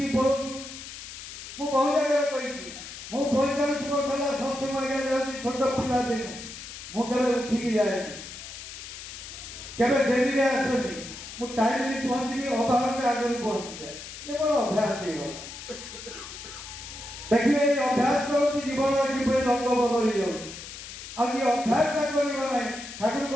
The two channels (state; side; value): noise; left; hiss, 12 dB below the sound